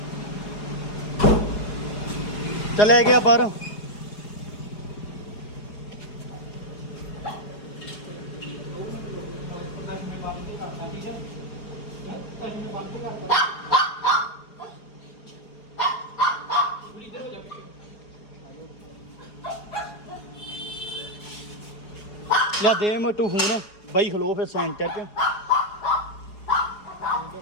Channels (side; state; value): right; late; 4.8 ms